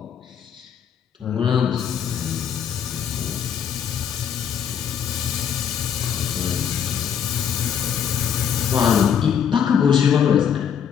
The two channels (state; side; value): quieter; right; 8.1 dB